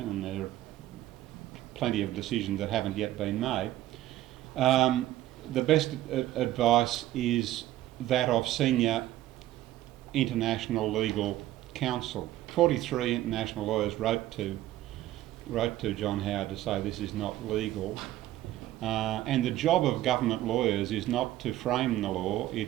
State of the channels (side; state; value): left; quieter; 14.6 dB